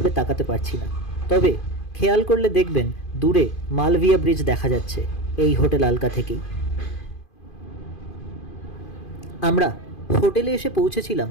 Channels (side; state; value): right; late; 2.5 ms